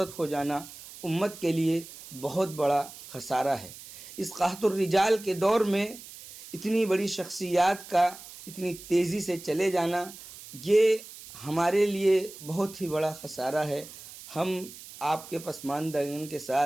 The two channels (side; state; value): right; noise; hiss, 16 dB below the sound